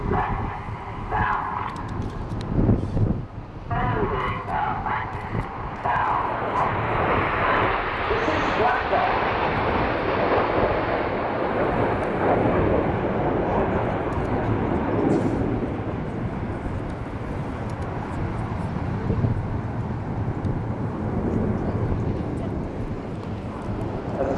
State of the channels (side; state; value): both; identical; correlation 1.00